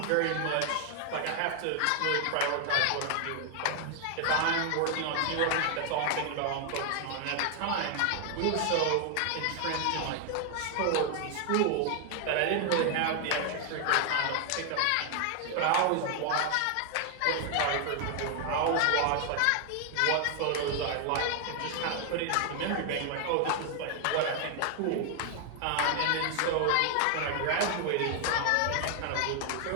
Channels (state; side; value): different; both; correlation 0.00